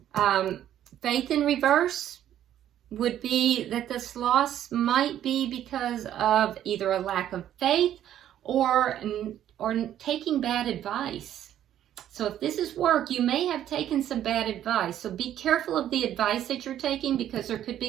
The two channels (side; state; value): left; quieter; 11.3 dB